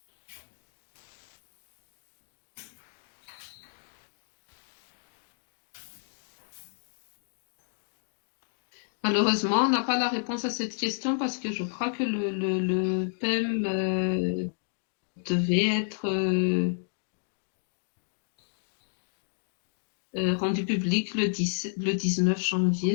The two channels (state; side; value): silent; right; digital silence